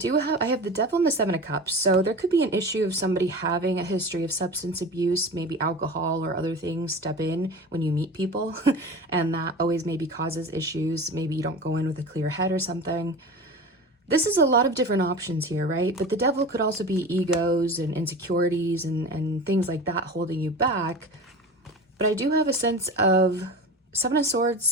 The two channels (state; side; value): normal; both; correlation 0.32